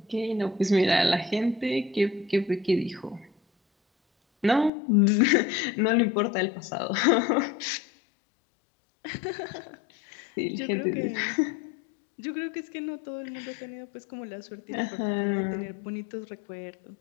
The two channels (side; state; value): right; drops out; at 4.7 s